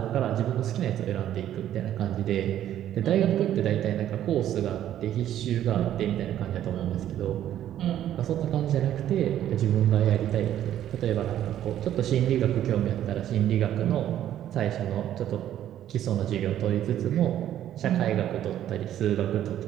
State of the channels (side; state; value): left; quieter; 11.5 dB